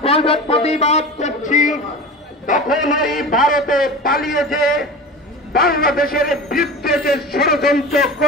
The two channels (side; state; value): both; normal; correlation 0.32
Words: প্রতিবাদ করছি, তখন এই ভারতে পালিয়ে যে বাংলাদেশের বিরুদ্ধে যে ষড়যন্ত্র